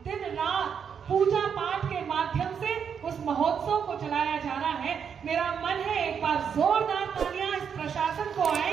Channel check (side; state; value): left; quieter; 7.3 dB